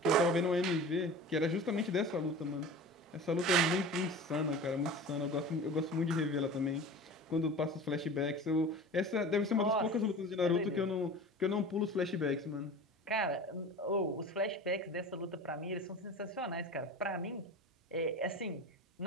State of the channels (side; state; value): both; normal; correlation 0.36